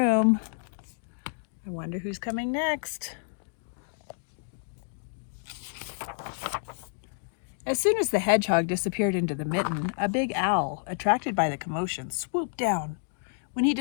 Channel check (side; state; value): right; silent; 58 dB below the other